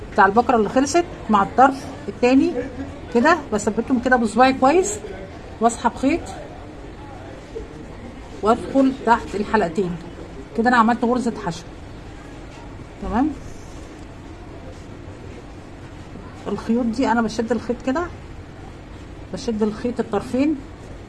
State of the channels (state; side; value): identical; both; correlation 1.00